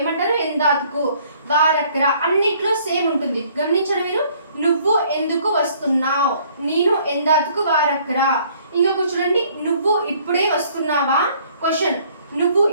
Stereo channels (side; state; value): both; inverted; correlation -0.60